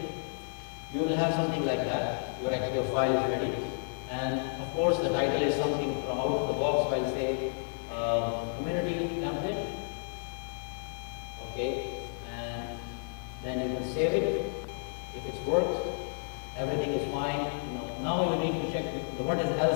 you will have something like that. Your file is ready. And of course, the title is something from out of the box, so I'll say community template. Okay, and then you can save it. If it's worked, everything is fine. Now you need to check what is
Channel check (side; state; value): right; silent; digital silence